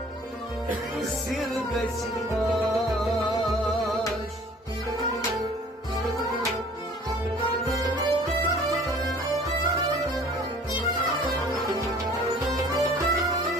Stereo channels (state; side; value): normal; both; correlation 0.51